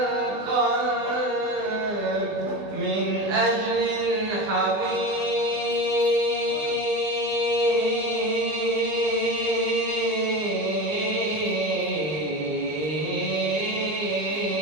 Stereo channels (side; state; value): left; late; 20 ms